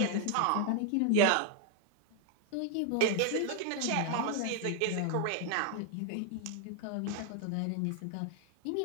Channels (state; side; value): different; both; correlation 0.00